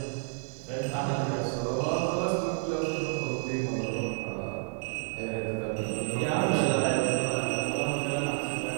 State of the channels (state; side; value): silent; left; 57 dB below the other